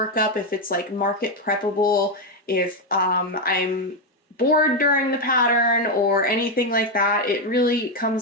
up, if it's market preppable, if I'm bored during the pattern or anything like that. It really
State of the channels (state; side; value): normal; both; correlation 0.06